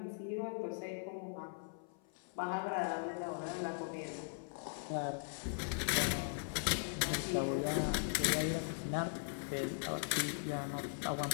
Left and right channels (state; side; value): silent; right; 51 dB below the other